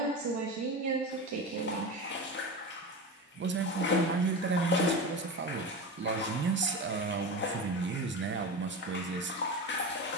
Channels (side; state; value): both; normal; correlation 0.25